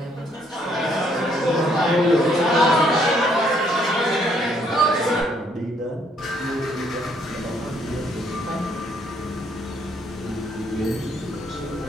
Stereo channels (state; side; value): normal; both; correlation 0.68